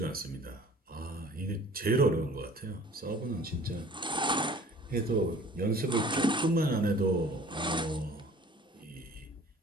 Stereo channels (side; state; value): both; normal; correlation 0.49